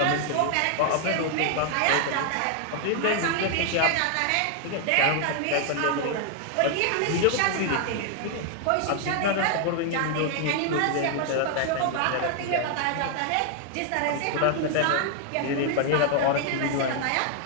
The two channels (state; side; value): different; both; correlation 0.00